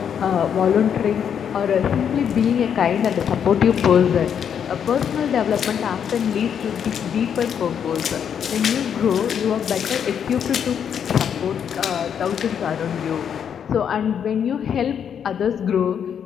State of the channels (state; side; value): quieter; right; 8.1 dB